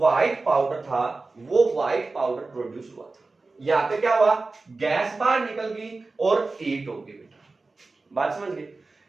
पाउडर था वो व्हाइट पाउडर प्रोड्यूस हुआ था। यहां पे क्या हुआ, गैस बाहर निकल गई और हीट हो गई बेटा। बात समझ गए।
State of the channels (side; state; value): left; quieter; 3.6 dB